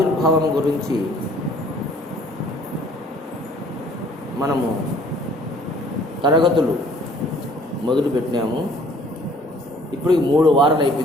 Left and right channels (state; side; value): normal; both; correlation 0.57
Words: గురించి మనము తరగతులు మొదలుపెట్టినాము. ఇప్పుడు 3 వారాలు